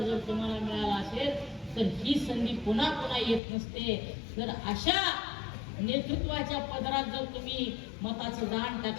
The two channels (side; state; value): right; drops out; at 3.4 s